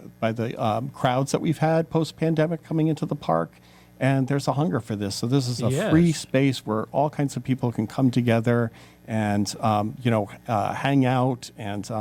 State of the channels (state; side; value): identical; both; correlation 1.00